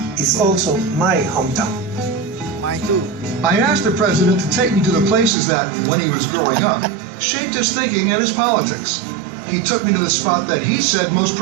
it's also my hometown. Mine too. I asked the president to take me to the places that, when he was growing up, shaped his thinking and his politics. He took me to the spot that he said most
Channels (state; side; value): drops out; left; at 5.4 s